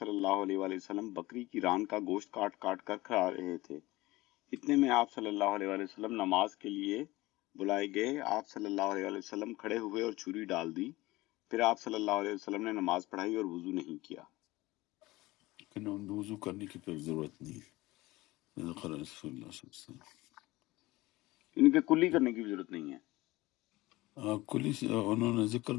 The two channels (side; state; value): right; quieter; 19.6 dB